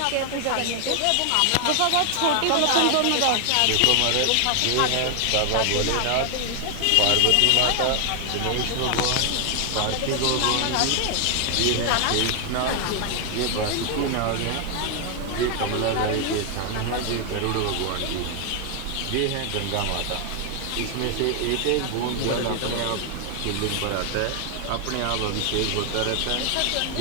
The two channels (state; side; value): different; both; correlation 0.00